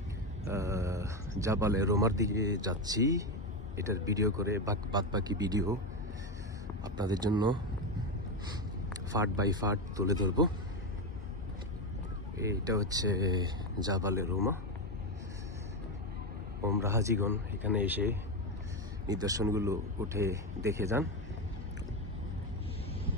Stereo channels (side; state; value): both; normal; correlation 0.12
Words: জাবালে রুমার দিকে যাচ্ছি। এটার ভিডিও করে বাকি ভিডিও আপনাদের জন্য ফার্ট বাই ফার্ট তুলে ধরব। এটা হচ্ছে জাবালে রুমা। ওমরা হাজিগণ এখানে এসে নিদর্শনগুলো উঠে দেখে যান।